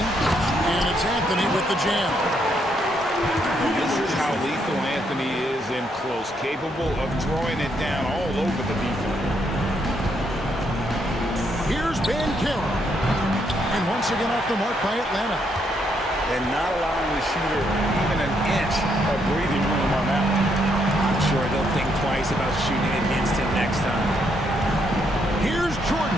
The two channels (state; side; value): normal; both; correlation 0.75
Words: And it's Anthony with the jam. This is how lethal Anthony is in close, capable of throwing it down all over the defense. Here's Banchero. And once again off the mark by Atlanta. And not allowing the shooter even an inch of breathing room on that one. I'm sure they'll think twice about shooting against him next time. Here's